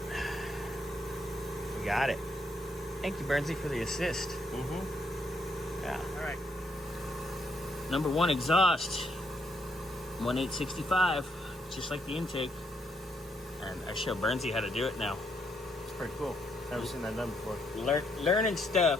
we got it. Thank you, Bernsey, for the assist. Yeah. All right. Number 1 exhaust, 1/865, just like the intake. And I show Bernsey how to do it now. It's pretty cool. Never seen that done before. Learning stuff.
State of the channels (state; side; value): normal; both; correlation 0.74